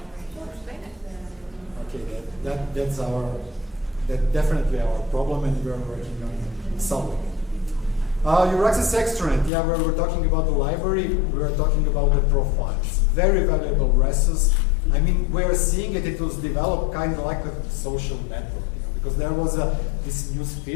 Okay, that's definitely our problem, and we're working on solving it. EURAXESS Extranet, yeah, where we're talking about the library, we're talking about the profiles. Very valuable resource. I mean, we're seeing it, it was developed kind of like a social network. Because there was this news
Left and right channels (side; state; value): right; drops out; at 9.5 s